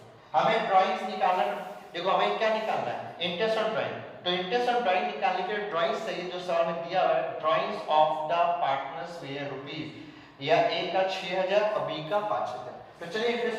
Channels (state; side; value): identical; both; correlation 1.00